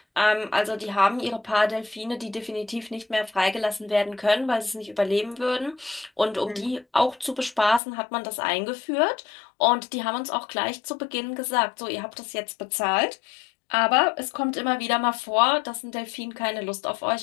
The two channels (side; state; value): right; drops out; at 7.8 s